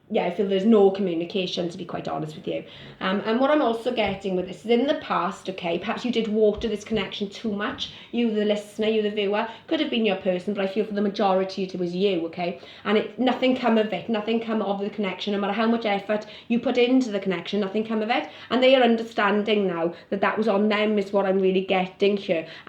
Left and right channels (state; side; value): identical; both; correlation 1.00